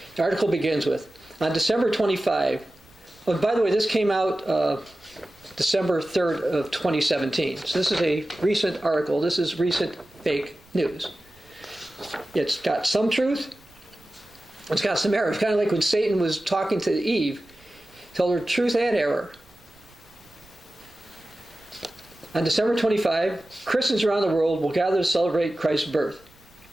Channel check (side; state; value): right; noise; rumble, 29 dB below the sound